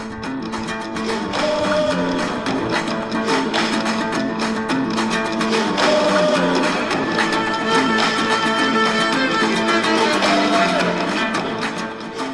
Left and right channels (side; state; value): both; identical; correlation 1.00